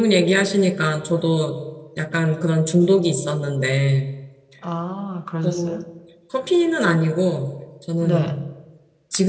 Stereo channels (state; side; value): identical; both; correlation 1.00